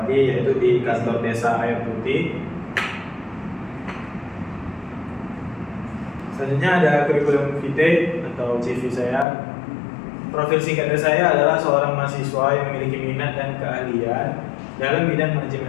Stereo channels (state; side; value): drops out; right; at 9.2 s